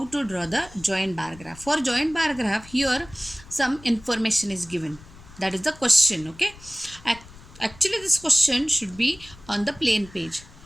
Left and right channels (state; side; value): noise; left; rumble, 20 dB below the sound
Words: to draw the joint bar graph. For joint bar graph, here some information is given. That is the question. Okay. Actually, this question should be on the plain page,